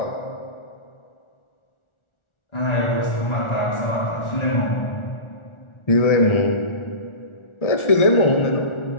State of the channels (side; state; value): right; late; 1.4 ms